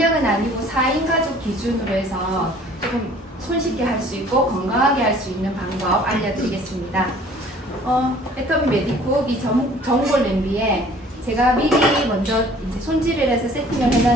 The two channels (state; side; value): normal; both; correlation 0.53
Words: 아니고 4인 가족 기준으로 해서 조금 손쉽게 할 수 있고 건강하게 할 수 있는 방법 알려드리겠습니다. 애터미 메디콕 이 전골 냄비에 제가 미리 먼저 이제 손질을 해서 세팅을